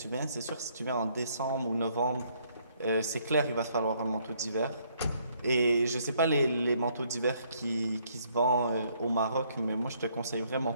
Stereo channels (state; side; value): inverted; both; correlation -0.68